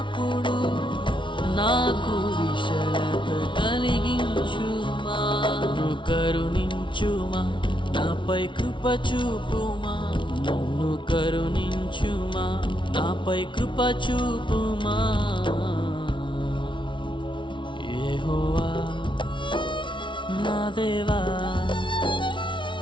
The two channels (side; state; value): right; late; 0.24 ms